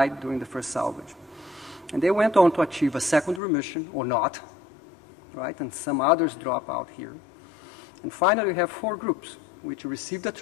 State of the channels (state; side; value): drops out; right; at 3.4 s